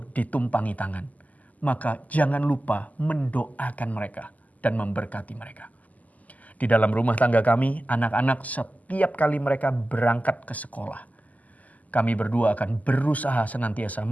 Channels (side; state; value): right; late; 0.077 ms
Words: ditumpangi tangan, maka jangan lupa mendoakan mereka dan memberkati mereka. Di dalam rumah tangga kami, anak-anak setiap kali mereka berangkat ke sekolah, kami berdua akan berusaha senantiasa